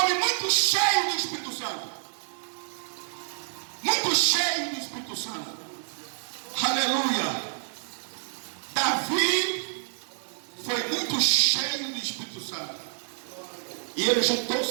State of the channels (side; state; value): left; silent; digital silence